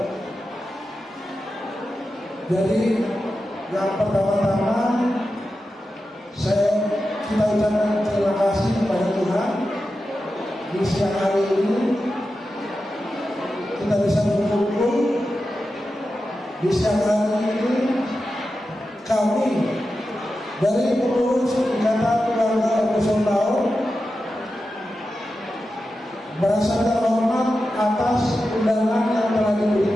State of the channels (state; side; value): normal; both; correlation 0.91